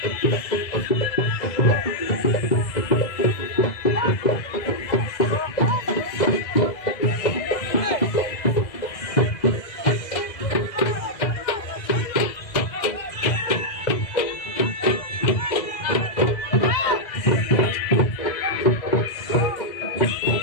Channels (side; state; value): right; late; 2.0 ms